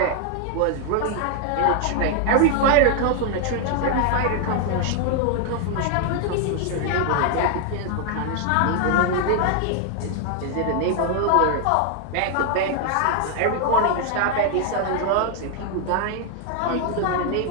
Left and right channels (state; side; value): different; both; correlation 0.00